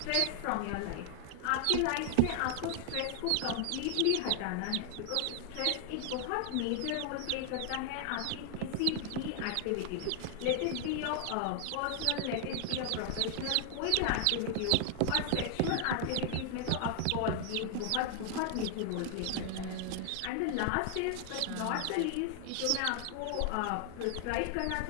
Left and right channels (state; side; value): different; both; correlation 0.00